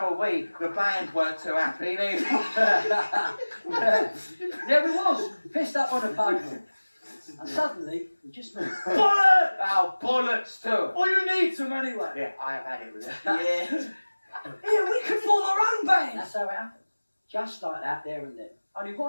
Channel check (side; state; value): both; inverted; correlation -1.00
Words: are we. The band weren't too happy, neither. There we was, pissed up on a pavement. And suddenly, we just moved. Bollocks! Oh, bullets too. Well, you need some anyway. Yeah, I have had it with it. Yeah. Yeah, we could form our own band. That's how it happened. Just like that, there and then. Only